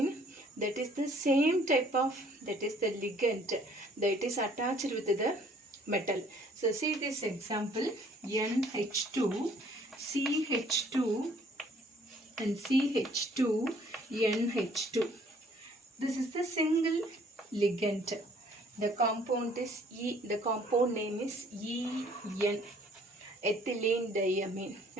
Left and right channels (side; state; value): both; normal; correlation 0.59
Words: that is the same type of, that is the ligand that is attached with the metal. So see this example, NH2 CH2 and CH2 NH2. This is the single ligand. The compound is the compound name is EN, ethylene diamine.